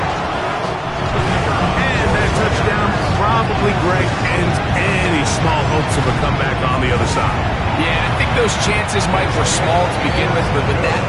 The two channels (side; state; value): both; identical; correlation 1.00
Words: And that touchdown probably, Greg, ends any small hopes of a comeback on the other side. Yeah, I think those chances, Mike, were small to begin with, but with that